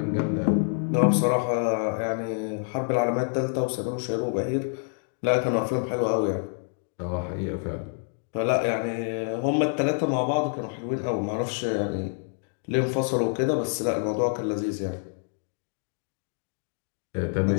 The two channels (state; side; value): silent; right; 60 dB below the other